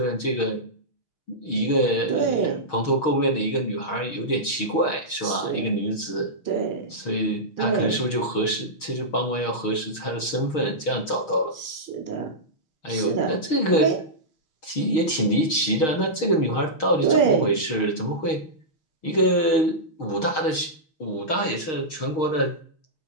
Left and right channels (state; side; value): late; right; 6.4 ms